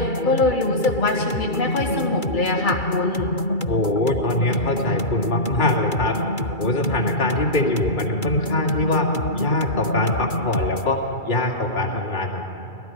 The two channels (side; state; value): right; late; 2.3 ms